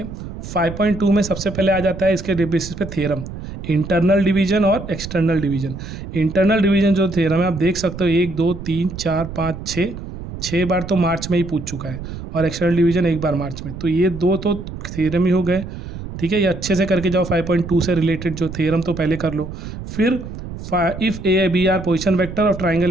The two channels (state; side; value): noise; right; rumble, 10 dB below the sound